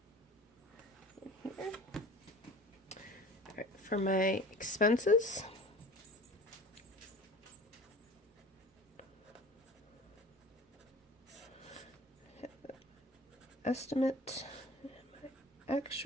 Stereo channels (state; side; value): normal; both; correlation 0.42